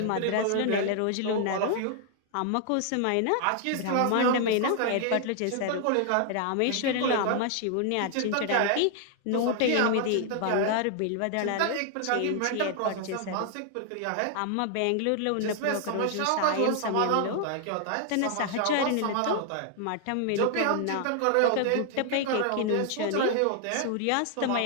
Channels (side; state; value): both; different; correlation 0.00